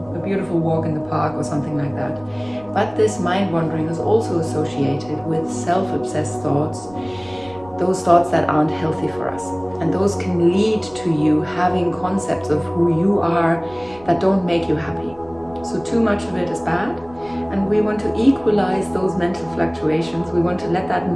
a beautiful walk in the park or something like that. But this mind wandering is also associated with self-obsessed thoughts, those thoughts that aren't healthy for us. And those can lead to you having concepts of who you are that don't make you happy. So too much of it is bad, and we want to equalize those mental fluctuations. We want to let that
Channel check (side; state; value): right; noise; rumble, 24 dB below the sound